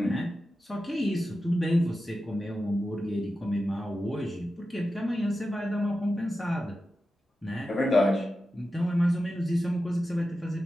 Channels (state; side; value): normal; both; correlation 0.92